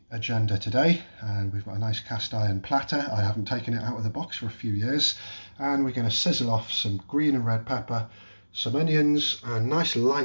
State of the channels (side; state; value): both; inverted; correlation -1.00